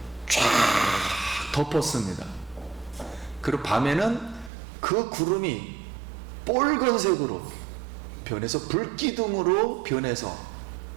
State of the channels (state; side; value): drops out; left; at 4.5 s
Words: 쫙 덮었습니다. 그리고 밤에는 그 구름이 붉은색으로 변해서 불기둥으로 변해서